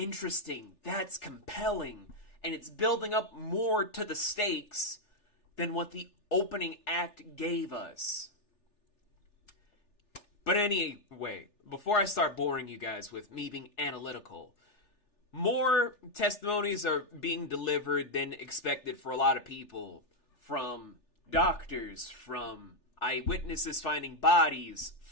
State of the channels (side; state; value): right; late; 3.4 ms